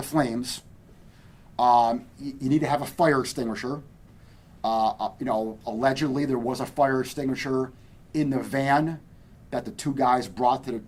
flames. You need to have a fire extinguisher. Allegedly there was a fire extinguisher in the van that the two guys brought to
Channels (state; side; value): identical; both; correlation 1.00